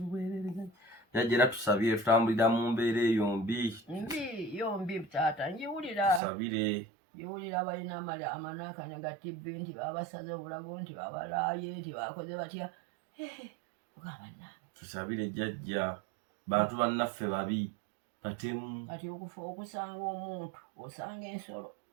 bwerere jjajja era tusabire tutambulira mu mbeera eyo yombi taata njiwulira tusabire njiwulira abalina amanaakanya ga tibbi nti babasaze obulago nti babalaaye nti bakoze batya ugambannange tusabire jjajja bantu bannaffe babi batemu kati okusanga omuntu osanga ensolo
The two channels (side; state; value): left; drops out; at 6.2 s